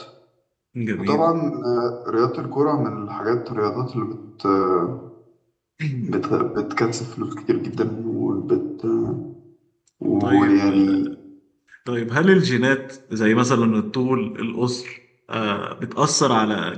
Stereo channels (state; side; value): identical; both; correlation 1.00